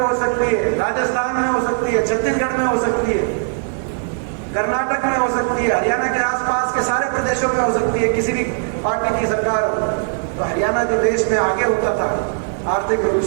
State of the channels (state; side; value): silent; left; digital silence